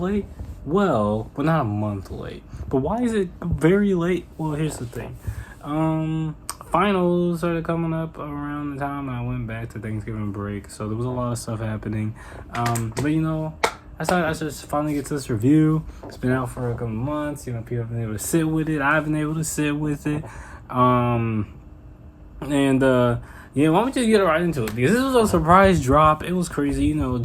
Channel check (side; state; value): both; identical; correlation 1.00